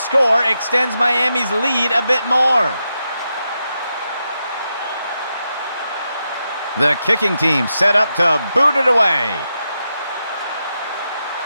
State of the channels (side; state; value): both; inverted; correlation -0.86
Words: extends Miami's lead a bit more. The kicking team set up to boot it away.